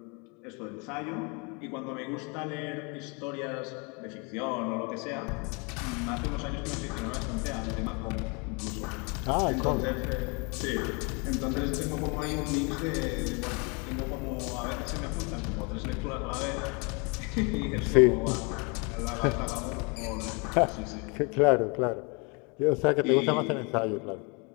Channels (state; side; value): quieter; right; 31.9 dB